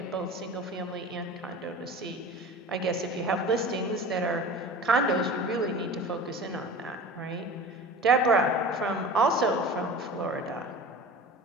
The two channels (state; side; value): normal; both; correlation 0.37